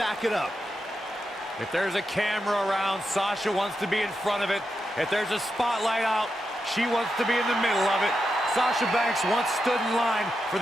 it up. If there's a camera around, Sasha wants to be in front of it. If there's a spotlight out, she wants to be in the middle of it. Sasha Banks once stood in line for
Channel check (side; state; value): both; normal; correlation 0.87